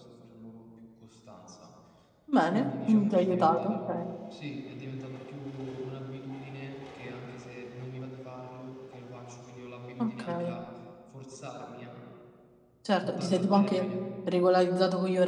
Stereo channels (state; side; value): identical; both; correlation 1.00